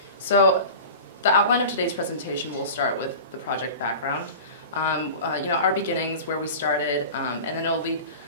So the outline of today's presentation will start with the project background. Our beginnings, where we started, and then it'll lead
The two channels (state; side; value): inverted; both; correlation -0.35